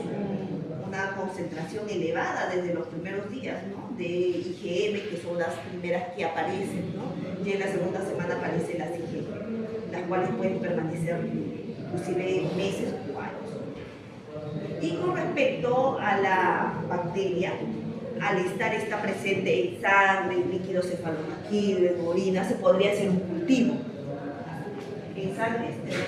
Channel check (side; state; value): both; identical; correlation 1.00